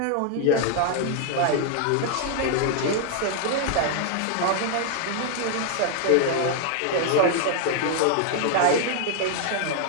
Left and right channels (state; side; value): different; both; correlation 0.00